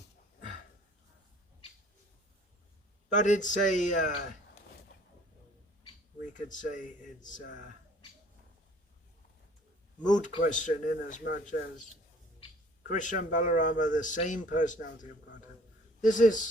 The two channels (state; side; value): normal; both; correlation 0.54